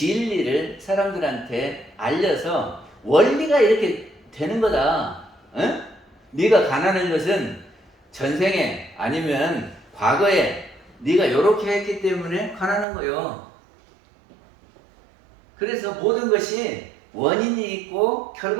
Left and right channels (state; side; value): drops out; left; at 12.9 s